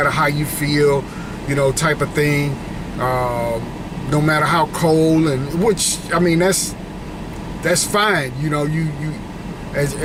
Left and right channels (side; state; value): both; identical; correlation 1.00